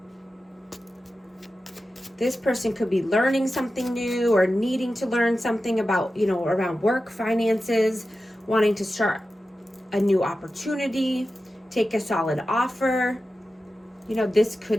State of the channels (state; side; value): normal; both; correlation 0.93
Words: This person could be learning something new or needing to learn something about, you know, around work, finances, wanting to start a new opportunity, take a solid offer. You know, this